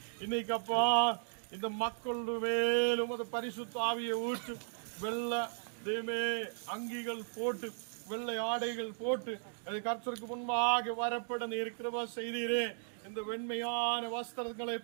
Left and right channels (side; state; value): left; silent; digital silence